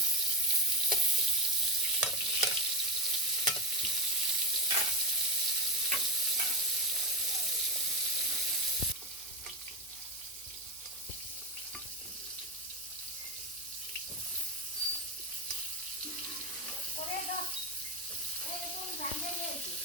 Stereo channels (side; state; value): right; noise; hum, 29 dB below the sound